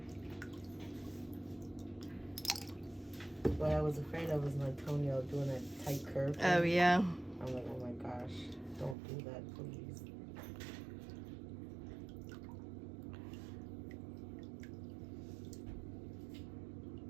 What I was afraid of was my toenail doing a tight curve. Oh yeah. I'm like, oh my gosh, don't do that, please.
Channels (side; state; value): left; drops out; at 9.0 s